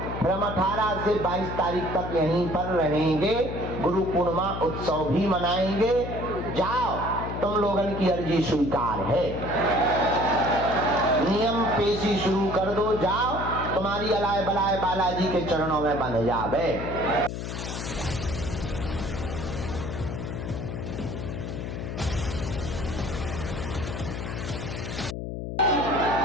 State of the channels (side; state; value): left; noise; hum, 5 dB below the sound